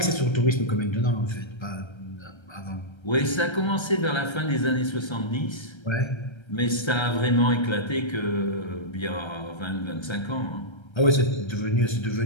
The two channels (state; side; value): late; right; 1.3 ms